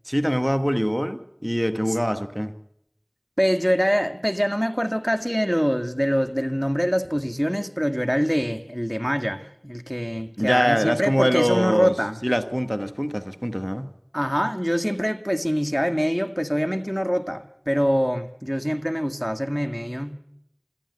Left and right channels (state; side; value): identical; both; correlation 1.00